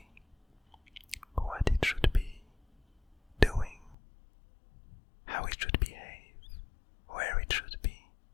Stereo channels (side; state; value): right; drops out; at 4.0 s